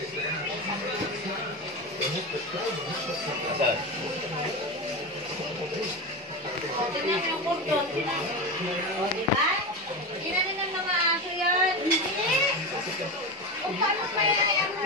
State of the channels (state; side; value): normal; both; correlation 0.19